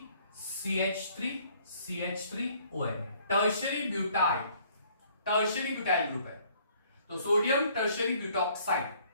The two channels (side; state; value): both; inverted; correlation -0.60